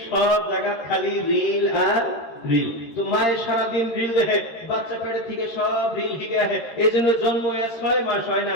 সব জায়গা খালি রিল আর রিল। তো মায়ের সারাদিন রিল দেখে বাচ্চা পেটে থেকে সব রিল শিখে আসে। এই জন্য জন্ম হয়ে 6 মাস হয় না,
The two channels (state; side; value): late; right; 13 ms